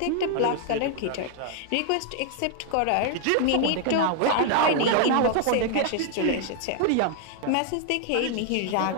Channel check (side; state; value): both; different; correlation 0.00